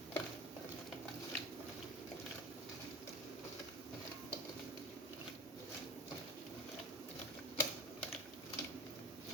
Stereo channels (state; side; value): normal; both; correlation 0.33